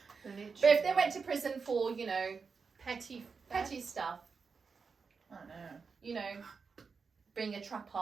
Literally. But if they went to prison for, you know... Petty stuff. I don't know. You know, being a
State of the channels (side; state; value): left; quieter; 5.2 dB